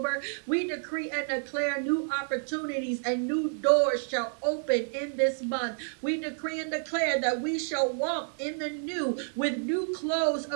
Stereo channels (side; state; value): left; silent; digital silence